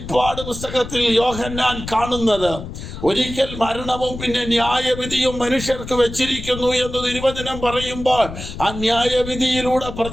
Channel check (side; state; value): left; noise; rumble, 10 dB below the sound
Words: പുസ്തകത്തിൽ യോഹന്നാൻ കാണുന്നത്. ഒരിക്കൽ മരണവും പിന്നെ ന്യായവിധിയും മനുഷ്യർക്ക് വെച്ചിരിക്കുന്നു എന്ന് തിരുവചനം പറയുമ്പോൾ, ആ ന്യായവിധിയിലൂടെ